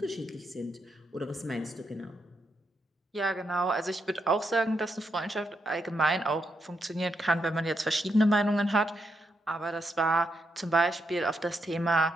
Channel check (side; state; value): both; normal; correlation 0.81